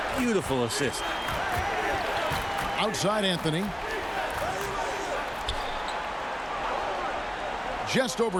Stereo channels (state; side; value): identical; both; correlation 1.00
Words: Beautiful assist. Outside Anthony. Just